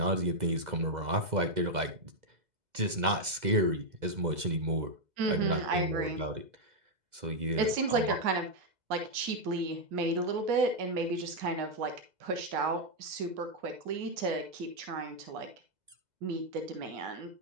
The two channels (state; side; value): late; left; 2.0 ms